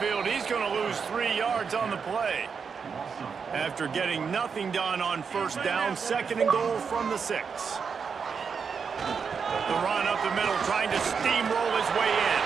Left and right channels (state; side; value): quieter; left; 6.0 dB